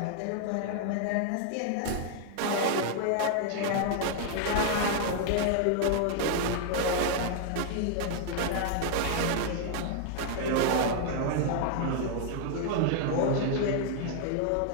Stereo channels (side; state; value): both; different; correlation 0.00